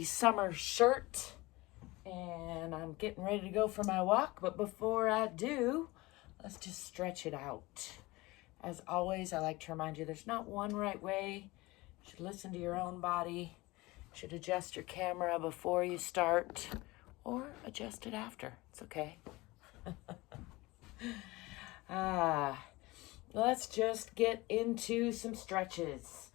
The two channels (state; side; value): quieter; right; 21.4 dB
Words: summer shirt and I'm getting ready to go for my walk. But before I do, let's just stretch it out. As always, I like to remind you there's not one right way. You should listen to your own body. You should adjust your camera before you start or adjust it after. It's okay. Let's just get into some stretches.